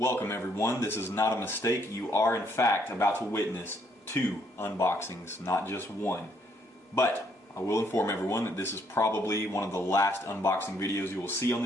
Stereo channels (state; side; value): normal; both; correlation 0.70